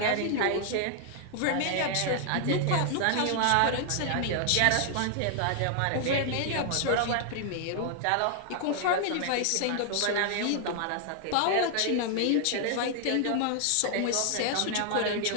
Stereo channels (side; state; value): both; different; correlation 0.00